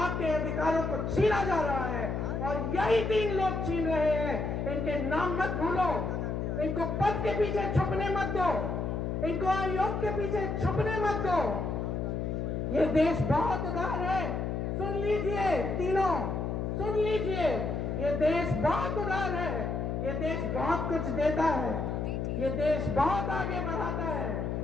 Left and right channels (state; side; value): noise; left; hum, 1 dB below the sound